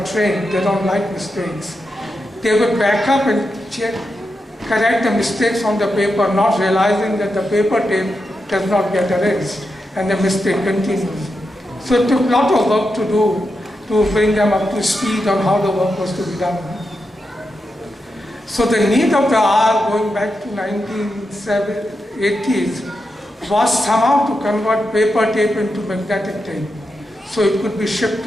trained, they don't like mistakes. They would back up and correct the mistakes on the paper, not realizing that the paper tape does not get erased, and the mistake continues. So it took a lot of work to do to bring them up to speed on how the work was to be done. So the need of the hour, going back to 1980s, was somehow to convert paper tape into magnetic tape, so it could be shipped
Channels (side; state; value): both; normal; correlation 0.87